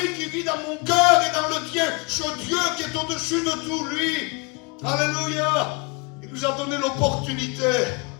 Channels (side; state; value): right; quieter; 29.5 dB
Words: qui vit dans mon cœur et dans le tien, ce Dieu qui est au-dessus de tout, lui. Alléluia. Il nous a donné l'opportunité